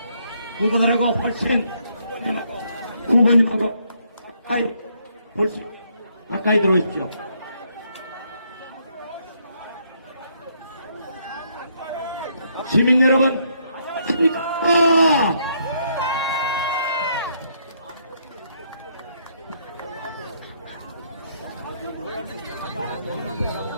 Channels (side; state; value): both; inverted; correlation -0.72